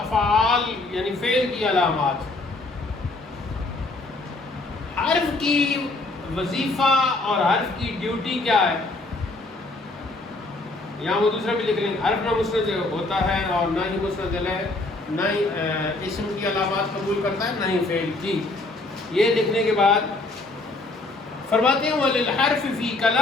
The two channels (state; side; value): quieter; right; 3.1 dB